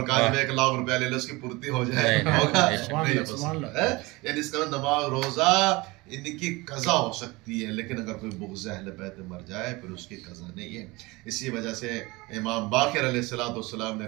کاج میں 1 لاکھ روپیہ لے لے اس کی پورتی ہو جائے، ہوگا نہیں. یعنی اس کا نماز روزہ ان کی قضا ہو سکتی ہے، لیکن اگر کوئی بغض اہل بیت میں مر جائے پھر اس کی قضا نہیں ہے. اسی وجہ سے امام باقر علیہ السلام نے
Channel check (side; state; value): left; quieter; 23.1 dB